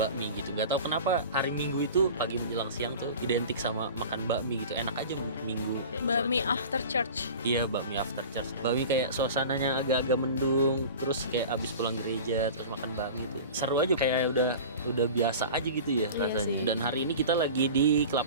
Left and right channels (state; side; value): inverted; both; correlation -0.37